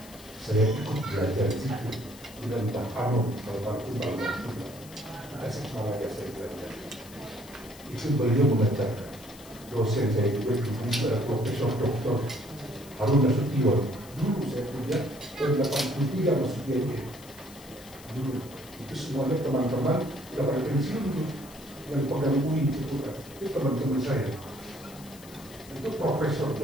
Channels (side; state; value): left; noise; hiss, 19 dB below the sound